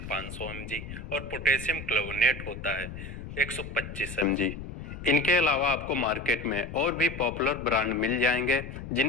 500 mg और पोटेशियम क्लोविनेट होता है 125 mg। इनके अलावा आपको मार्केट में और भी पॉपुलर ब्रांड मिल जाएंगे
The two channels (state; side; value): noise; left; rumble, 10 dB below the sound